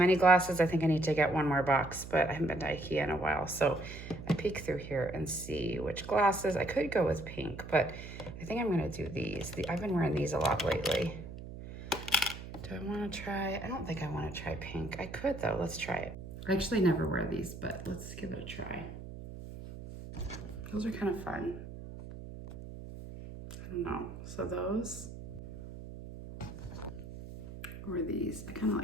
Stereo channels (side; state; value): right; noise; hum, 11 dB below the sound